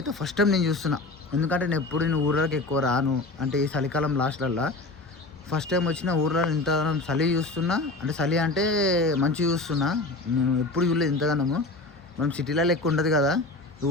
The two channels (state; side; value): quieter; right; 3.1 dB